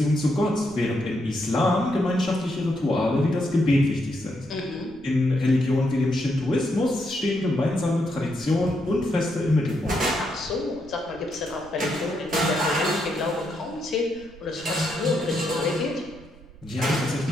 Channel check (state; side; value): noise; right; rumble, 22 dB below the sound